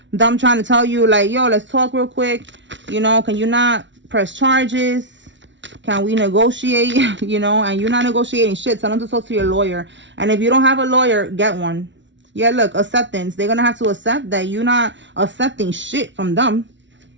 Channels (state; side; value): late; left; 0.54 ms